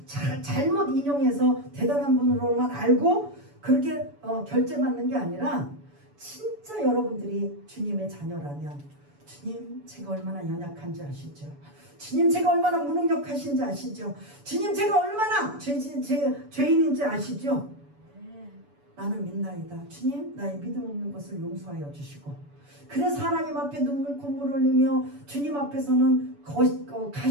잘못 인용해서 대단한 분으로만 알고 그렇게 결제 받는 게 아니라 진짜 여러분들이 주님의 자녀라면 주님 제가 얼마나 연약한지 아시죠? 주님 제가 얼마나 무능력하신지 아시죠? 주님 제가 얼마나 죄인인지 아시죠? 나는 믿나이다. 주님 나의 믿음 없는 것을 용서하여 주시고 그래서 하나님 앞에 눈물 콧물 흘리며 주님 앞에서는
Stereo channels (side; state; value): left; late; 7.0 ms